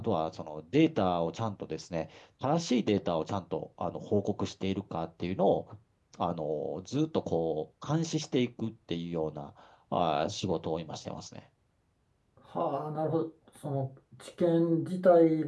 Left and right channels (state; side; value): identical; both; correlation 1.00